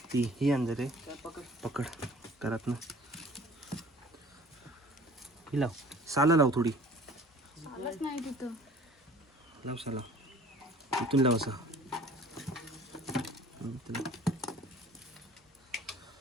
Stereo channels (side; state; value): both; normal; correlation 0.49